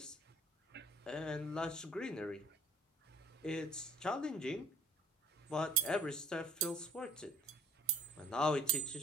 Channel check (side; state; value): both; normal; correlation 0.52